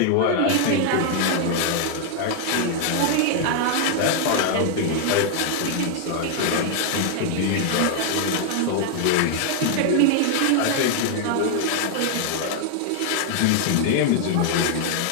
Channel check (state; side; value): different; both; correlation 0.00